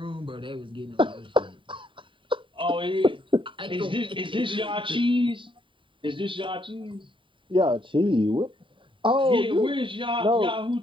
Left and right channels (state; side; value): late; left; 0.25 ms